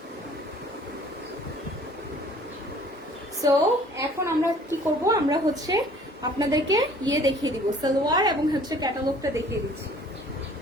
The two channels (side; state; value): both; normal; correlation 0.53